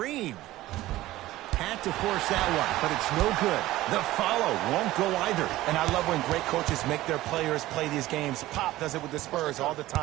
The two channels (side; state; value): left; quieter; 16.4 dB